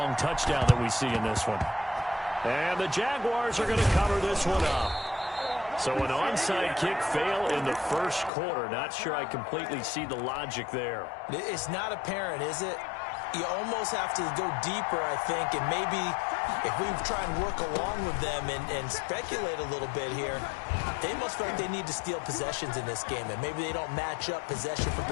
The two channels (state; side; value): drops out; right; at 8.3 s